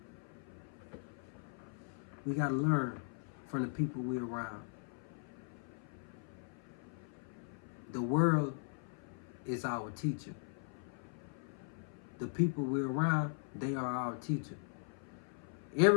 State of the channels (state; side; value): silent; right; 52 dB below the other